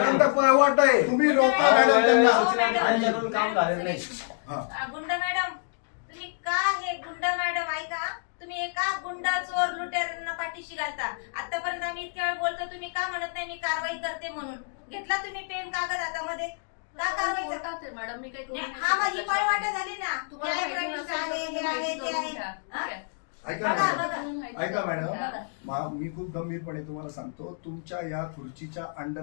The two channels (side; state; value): right; silent; digital silence